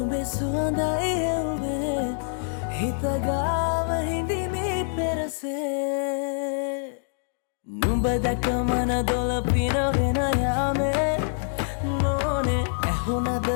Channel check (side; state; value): right; silent; digital silence